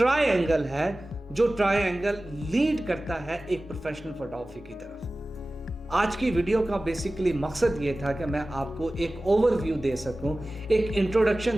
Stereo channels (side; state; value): both; normal; correlation 0.97